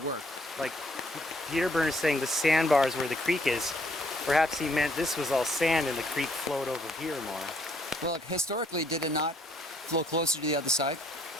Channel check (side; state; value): both; normal; correlation 0.67